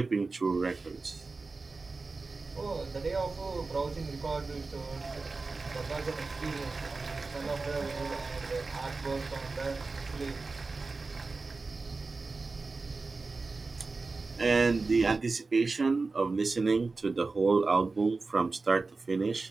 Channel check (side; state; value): left; quieter; 3.9 dB